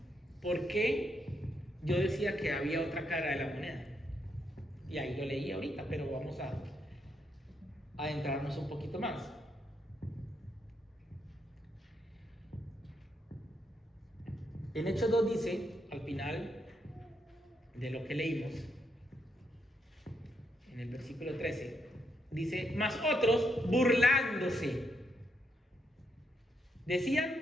¿por qué yo decía que había otra cara de la moneda? Y ahí lo leí ahorita, pero vamos a adentrarnos un poquito más. En Hechos 2 dice, al final de lo que leímos, en el versículo 13, dice, mas otros burlándose,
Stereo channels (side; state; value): both; normal; correlation 0.78